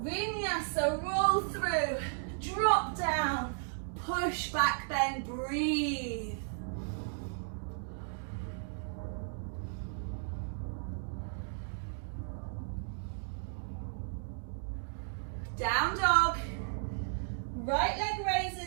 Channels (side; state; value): left; silent; digital silence